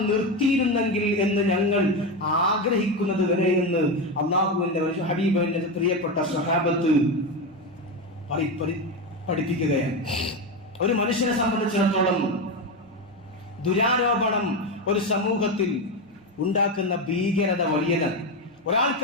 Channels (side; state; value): both; normal; correlation 0.14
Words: നിർത്തിയിരുന്നെങ്കിൽ എന്ന് ഞങ്ങൾ ആഗ്രഹിക്കുന്നത് വരെ എന്ന് അള്ളാഹുവിന്റെ ഹബീബിന്റെ പ്രിയപ്പെട്ട സ്വഹാബത്ത് പഠിപ്പിക്കുകയാണ്. ഒരു മനുഷ്യനെ സംബന്ധിച്ചിടത്തോളം ദുരാരോപണം ഒരു സമൂഹത്തിൽ ഉണ്ടാക്കുന്ന ഭീകരത വലിയതാണ്.